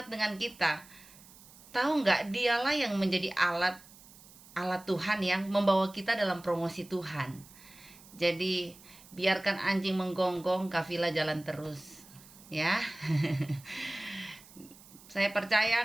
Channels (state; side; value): noise; right; hiss, 22 dB below the sound